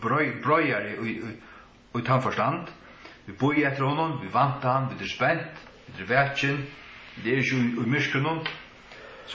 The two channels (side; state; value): both; identical; correlation 1.00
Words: brøyar i tannforstand. Vi boi etter honom, vi vanta han, vi er spent, vi er vetjen, det er ikke i myskrunnen,